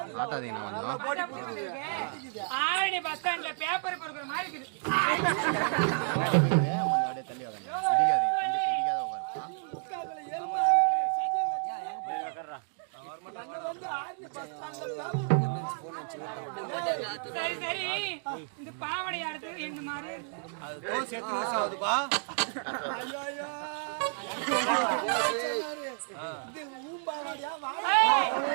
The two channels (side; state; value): left; silent; 57 dB below the other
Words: காட்டாதீங்க கொஞ்சம். ஆரணி பஸ் ஸ்டாண்ட்ல பேப்பர் பொறுக்கிற மாதிரி இருக்குது. தள்ளி இடிக்காத உட்காருப்பா. சரி சரி, இந்த பாவடை அடுத்து இந்த மாதிரி